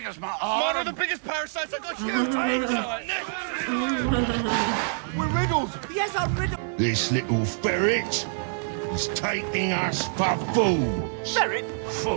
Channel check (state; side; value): silent; left; 61 dB below the other